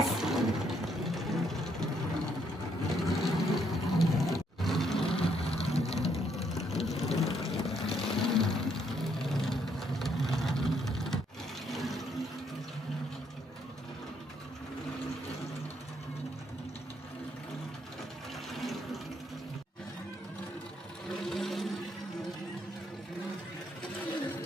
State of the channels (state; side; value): normal; both; correlation 0.72